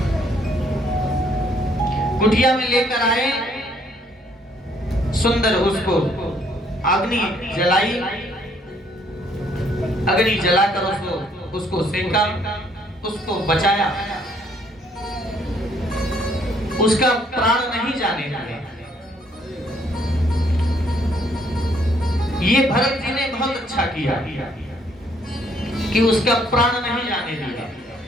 कुटिया में लेकर आए, सुंदर उसको अग्नि जलाई, अग्नि जलाकर उसको सेंका, उसको बचाया, उसका प्राण नहीं जाने दिया। ये भरत जी ने बहुत अच्छा किया कि उसका प्राण नहीं जाने दिया।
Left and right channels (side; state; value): both; normal; correlation 0.66